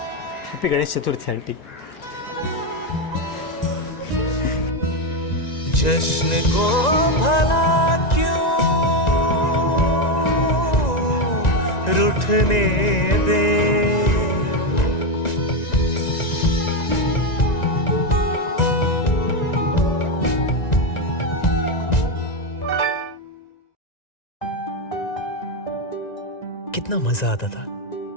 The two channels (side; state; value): right; late; 1.9 ms